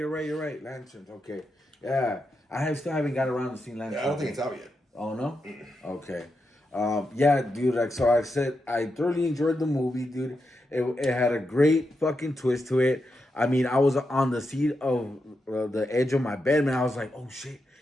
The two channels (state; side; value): normal; both; correlation 0.86